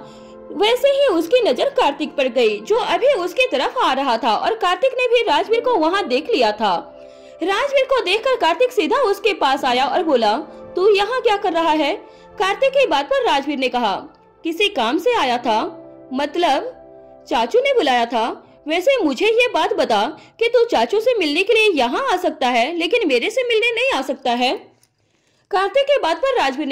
वैसे ही उसकी नजर कार्तिक पर गई जो अभी उसकी तरफ आ रहा था और कार्तिक ने भी राजवीर को वहाँ देख लिया था। राजवीर को देखकर कार्तिक सीधा उसके पास आया और बोला, तू यहाँ क्या कर रहा है? कार्तिक की बात पर राजवीर ने कहा, किसी काम से आया था। मतलब चाचू ने बुलाया था। वैसे मुझे ये बात बता कि तू चाचू से मिलने के लिए यहाँ आ सकता है लेकिन मेरे से मिलने नहीं आ सकता है। कार्तिक की बात पर राजवीर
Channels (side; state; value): both; identical; correlation 1.00